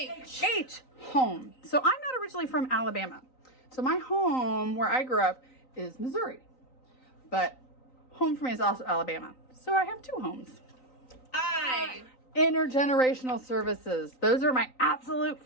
H. Home. So I'm not originally from Alabama. So my home where I grew up is Missouri. But home for me is also Alabama. So I have two homes. I. Intergenerational services. Those are my absolute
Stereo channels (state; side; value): late; right; 3.9 ms